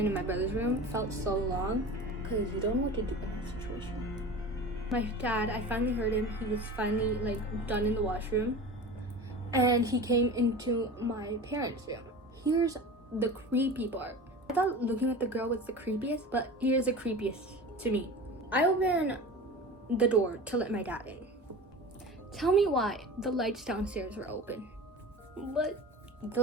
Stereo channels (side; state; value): both; normal; correlation 0.33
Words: in my brother's room. It felt so long because you don't know what to do in that situation. My dad, I finally heard him. He was finally like done in the washroom, and he came into my parents' room. Here's the creepy part. I thought looking at the girl was the creepiest, but here's the creepiest to me. I opened the door to let my dad in. Tell me why the lights downstairs were open. But the